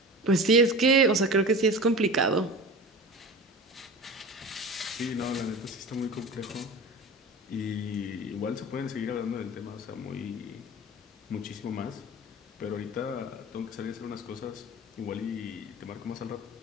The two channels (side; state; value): both; normal; correlation 0.33